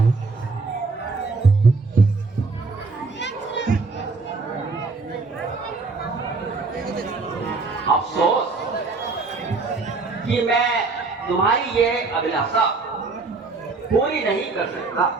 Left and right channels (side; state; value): left; quieter; 4.0 dB